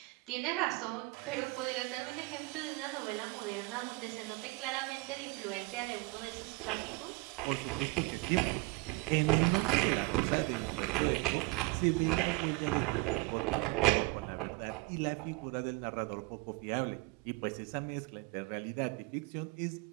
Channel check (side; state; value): left; quieter; 25.1 dB